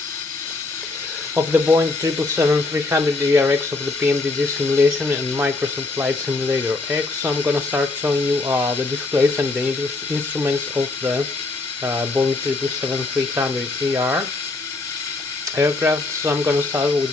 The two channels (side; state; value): right; quieter; 3.4 dB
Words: of the Boeing 777-300 ERX of the PMDG simulation and Microsoft Flight Simulator X. So I'm gonna start showing you the displays and the instruments of the Boeing 777-300 aircraft. So I'm gonna start with